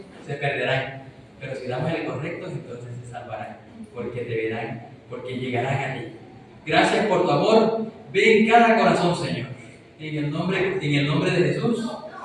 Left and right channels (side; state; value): both; identical; correlation 1.00